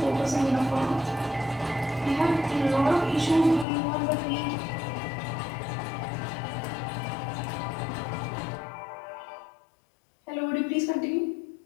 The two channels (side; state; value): right; drops out; at 3.7 s